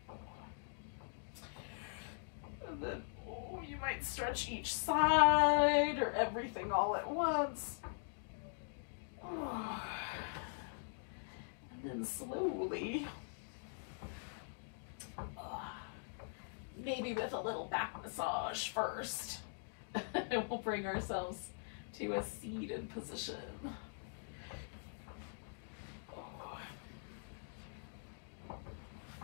And then, you might stretch each side or everything all at once. And then slowly, maybe with a little back massage first, we'll bring ourselves to a seated position.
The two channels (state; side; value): silent; right; digital silence